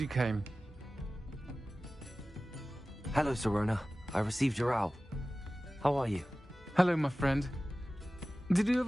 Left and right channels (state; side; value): normal; both; correlation 0.96